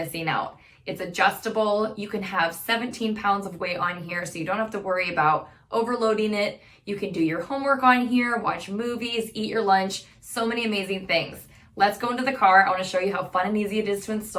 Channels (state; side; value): identical; both; correlation 1.00